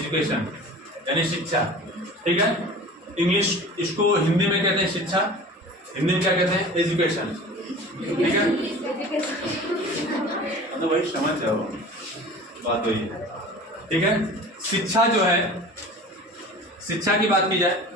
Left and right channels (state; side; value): normal; both; correlation 0.39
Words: यानी शिक्षा, ठीक है? इंग्लिश, इसको हिंदी में कहते हैं शिक्षा, हिंदी में क्या कहते हैं? एजुकेशन, ठीक है? मतलब वही समझ जाओ, बात वही है, ठीक है? शिक्षा जो है, शिक्षा की बात की जाए,